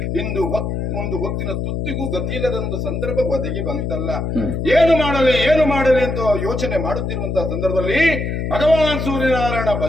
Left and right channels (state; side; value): noise; left; hum, 2 dB below the sound